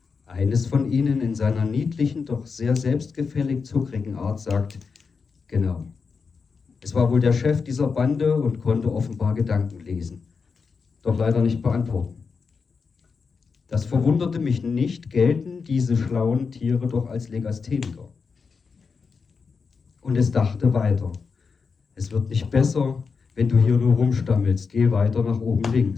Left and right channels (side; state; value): right; quieter; 5.2 dB